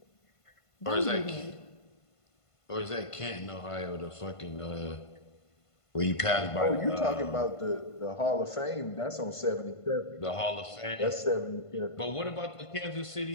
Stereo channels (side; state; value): right; late; 1.5 ms